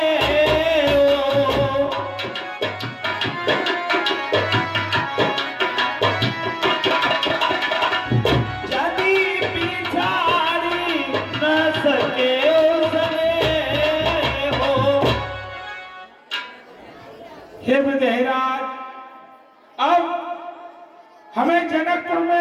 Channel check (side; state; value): both; identical; correlation 1.00